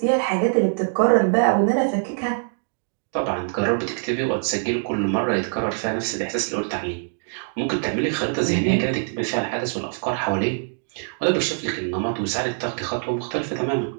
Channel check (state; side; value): silent; left; digital silence